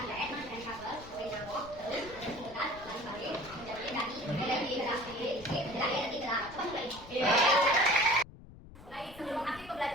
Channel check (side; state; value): left; noise; rumble, 18 dB below the sound